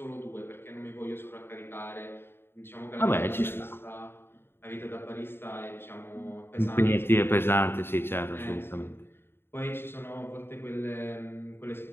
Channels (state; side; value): late; right; 0.11 ms